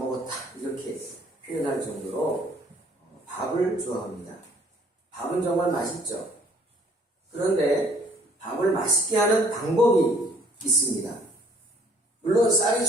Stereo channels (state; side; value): normal; both; correlation 0.60